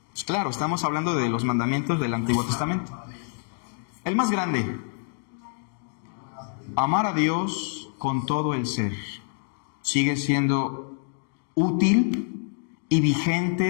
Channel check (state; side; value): silent; right; 56 dB below the other